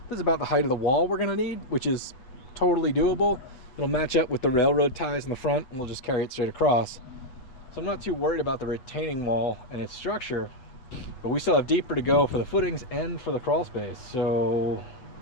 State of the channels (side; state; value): right; late; 8.0 ms